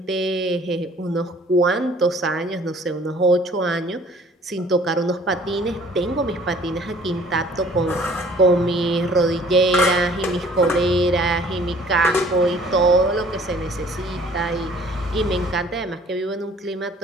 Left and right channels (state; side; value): normal; both; correlation 0.55